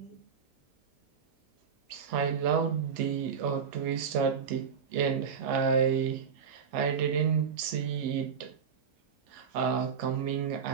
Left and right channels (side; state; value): left; quieter; 6.7 dB